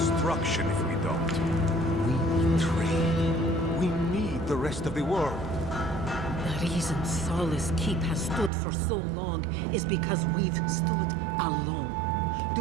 if we don't. We trade. We need the rest of the world. The reason Solace Keep has stood for so long is because we've stood alone.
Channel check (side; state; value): left; drops out; at 8.5 s